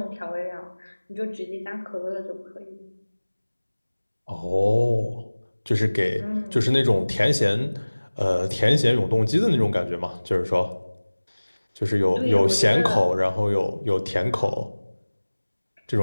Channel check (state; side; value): inverted; both; correlation -1.00